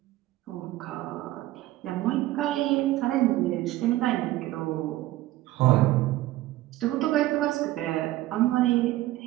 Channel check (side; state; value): left; quieter; 16.2 dB